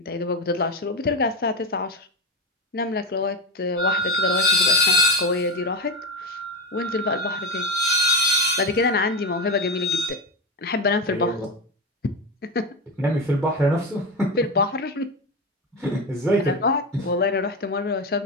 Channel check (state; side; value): normal; both; correlation 0.18